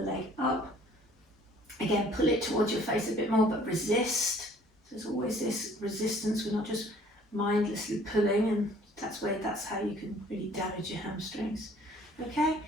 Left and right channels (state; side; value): normal; both; correlation 0.56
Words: leg up. Again, pull it towards your face a bit more, but resist. So there's always this resistance. We're not just mindlessly pulling, and that's how you can really damage your hamstrings. Okay,